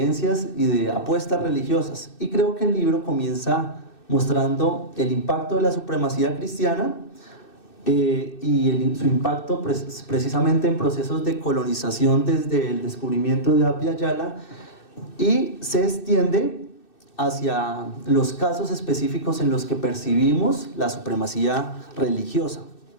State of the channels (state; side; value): late; right; 2.6 ms